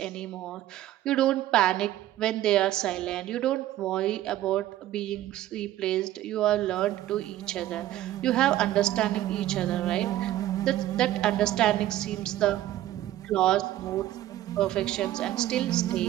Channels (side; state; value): left; quieter; 13.9 dB